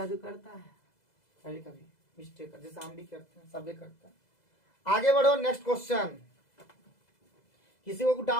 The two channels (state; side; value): late; right; 2.0 ms